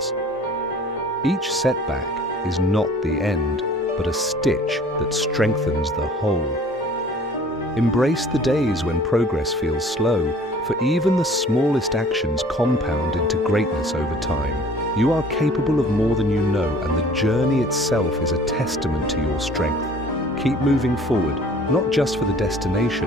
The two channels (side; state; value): both; normal; correlation 0.51